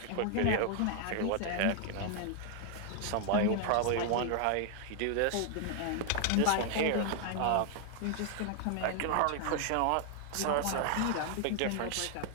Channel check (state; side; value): different; both; correlation 0.00